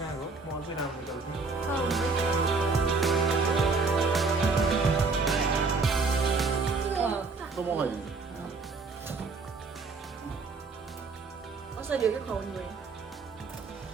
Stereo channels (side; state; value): left; quieter; 4.2 dB